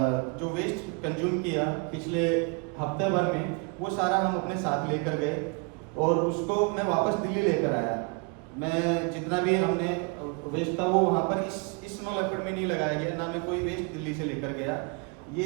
जो वेस्ट कंज्यूम किया पिछले हफ्ते भर में, वो सारा हम अपने साथ लेकर गए और उसको मैं वापस दिल्ली लेकर आया। मैं जितना भी हमने वेस्ट था वो वहाँ पर इस स्नो लेपर्ड में नहीं लगाया गया, ना मैं कोई वेस्ट दिल्ली से लेकर गया। ये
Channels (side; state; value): left; quieter; 32.4 dB